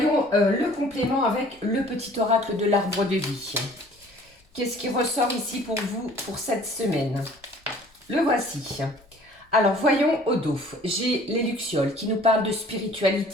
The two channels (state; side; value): normal; both; correlation 0.52